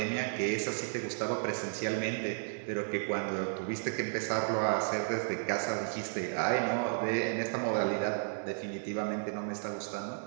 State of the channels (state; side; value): silent; left; 55 dB below the other